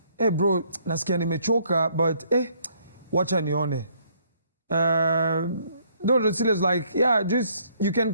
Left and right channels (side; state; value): both; inverted; correlation -0.66